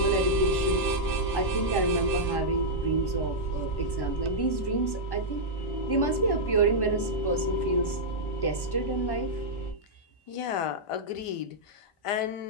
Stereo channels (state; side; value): late; right; 1.1 ms